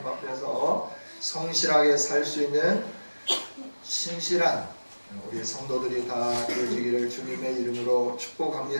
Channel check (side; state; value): both; inverted; correlation -1.00